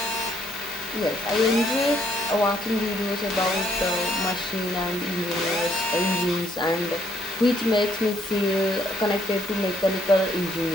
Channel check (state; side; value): normal; both; correlation 0.67